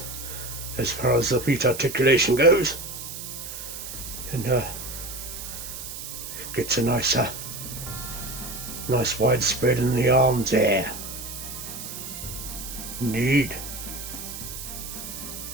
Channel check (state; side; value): noise; right; hiss, 9 dB below the sound